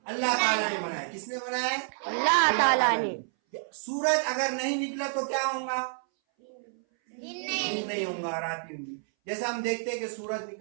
अल्लाह ताला ने बनाया। किसने बनाया? अल्लाह ताला ने। सूरज अगर नहीं निकला तो क्या होगा? दिन नहीं होगा, रात होगी। जैसा हम देखते हैं कि सूरज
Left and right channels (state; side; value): silent; left; 58 dB below the other